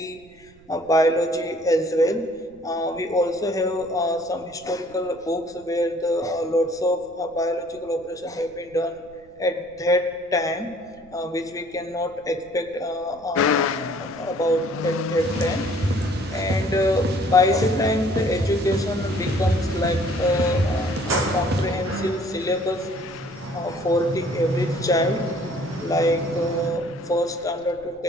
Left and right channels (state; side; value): noise; right; rumble, 27 dB below the sound